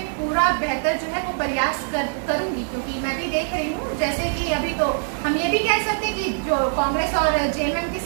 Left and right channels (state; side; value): silent; left; digital silence